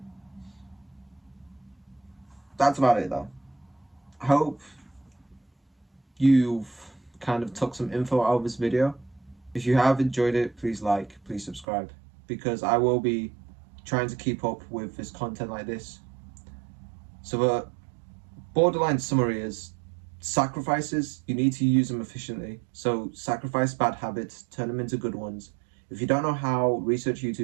That's about it though. I hope you've kind of took some info out of this video. If you have enjoyed it, please like, please subscribe, because I will be trying to keep up with this content like this. So the borderline summary is sacrifices, you need to use them efficiently. So sacrifice bad habits, turn them into good ones. If you don't know how, research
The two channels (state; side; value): drops out; left; at 11.7 s